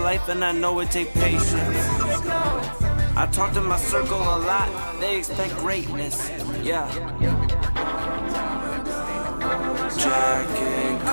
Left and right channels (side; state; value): both; inverted; correlation -1.00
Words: and I know it take patience. I talk to my circle a lot, they expect greatness, yeah. Jack and